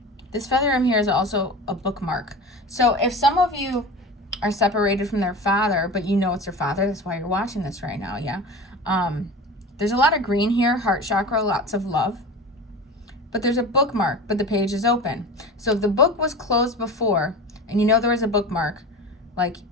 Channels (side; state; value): both; normal; correlation 0.32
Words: This feather in here is also a bookmark. So if some of you are separated from their father, but you know it's their father, that's why you're watching this right now, yeah? There's a lot of green here, heart chakra, lots of love. But there's a bookmark, but the page is open. So if the book was closed before, and you know there was a bookmark, like